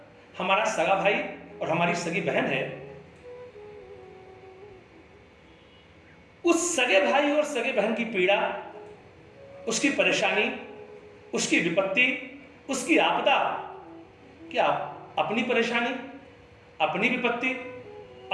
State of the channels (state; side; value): identical; both; correlation 1.00